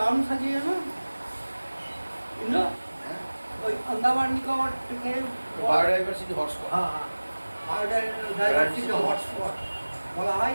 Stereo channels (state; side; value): inverted; both; correlation -1.00